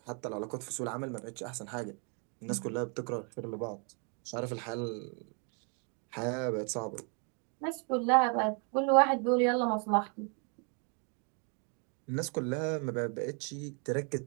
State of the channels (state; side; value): quieter; left; 38.4 dB